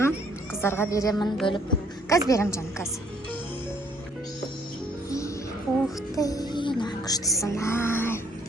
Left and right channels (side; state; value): both; normal; correlation 0.64